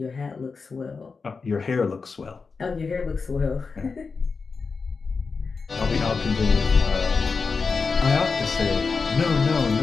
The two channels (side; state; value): right; quieter; 4.7 dB